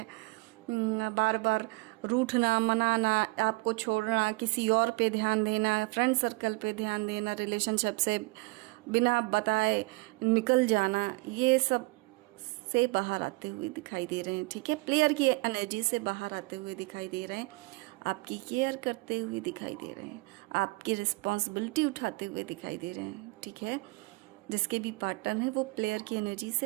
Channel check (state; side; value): quieter; left; 26.7 dB